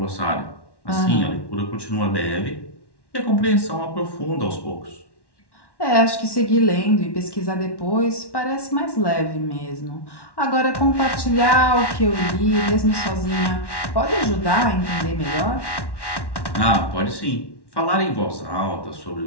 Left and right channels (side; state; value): right; late; 1.1 ms